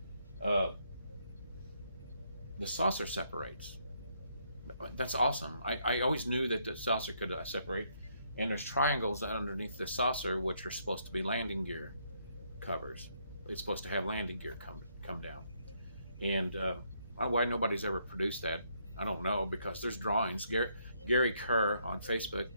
the saucer separates. That's awesome. I always knew that the saucer could separate. And there's triangles underneath the saucer, which are supposed to be landing gear covers. It's supposed to have landing gear come down. And why nobody's ever produced that, I don't know, because there's drawings. Gary Kerr on Facebook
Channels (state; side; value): inverted; both; correlation -0.72